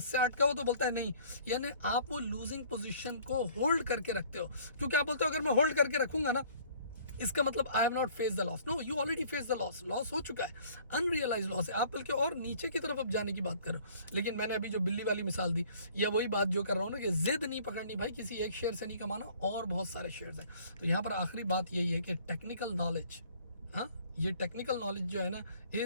से 8 का हो तो बोलता है नहीं, यानी आप वो लूजिंग पोजीशन को होल्ड करके रखते हो. क्योंकि आप बोलते हो अगर मैं होल्ड करके रखूंगा ना इसका मतलब I have not face the loss. No, you already face the loss. Loss हो चुका है, अनरियलाइज लॉस है। आप बल्कि और नीचे की तरफ अब जाने की बात करो। लेकिन मैंने अभी जो बिल्ली वाली मिसाल दी, या वही बात जो कर रहा हूँ ना कि जिद नहीं पकड़नी भाई, किसी एक शेयर से नहीं कमाना, और बहुत सारे शेयर्स हैं। तो यहाँ पर आखिरी बात यही है कि टेक्निकल नॉलेज, हाँ, ये टेक्निकल नॉलेज जो है ना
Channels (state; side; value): inverted; both; correlation -0.54